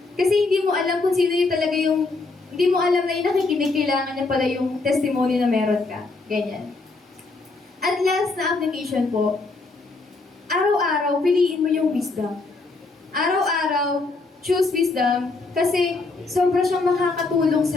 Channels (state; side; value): quieter; right; 3.6 dB